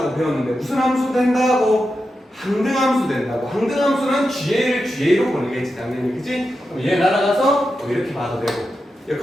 배웠는데 무슨 함수 된다고? 항등함수 된다고. 항등함수는 GA를 GA로 보내겠지, 당연히, 그치? 그럼 얘 날아가서 이렇게 봐도 되고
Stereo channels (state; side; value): normal; both; correlation 0.89